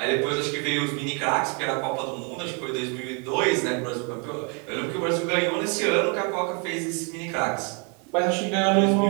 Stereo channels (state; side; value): quieter; left; 35.8 dB